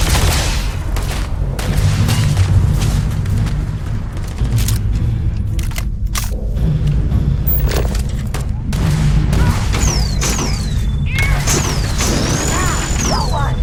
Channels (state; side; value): identical; both; correlation 1.00